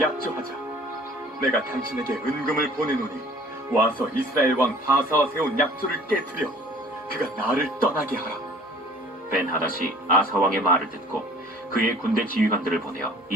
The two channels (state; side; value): normal; both; correlation 0.51